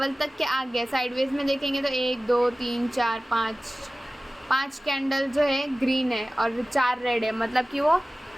तक के आ गया। साइडवेज में देखेंगे तो 1 2 3 4 5 कैंडल जो है ग्रीन है और 4 रेड है, मतलब कि वो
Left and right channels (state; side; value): normal; both; correlation 0.97